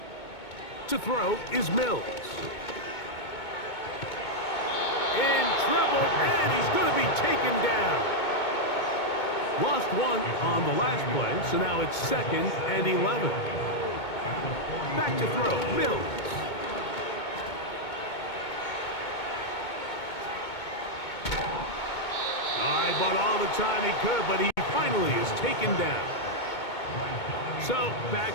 To throw is Mills. In trouble, and he's going to be taken down. Lost one on the last play, so now it's 2nd and 11. Back to throw, Mills. But all the time he could, but he finally is taken down. So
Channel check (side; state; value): right; late; 2.2 ms